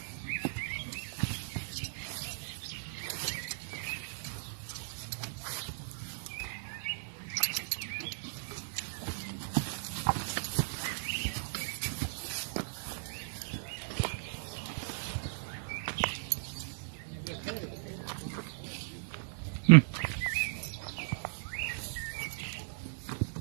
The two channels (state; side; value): silent; left; digital silence